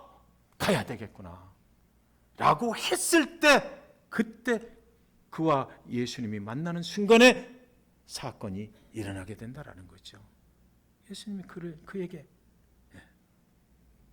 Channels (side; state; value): both; identical; correlation 1.00